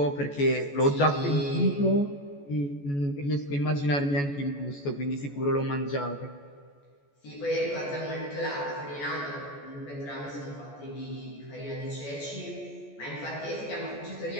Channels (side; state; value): right; late; 14 ms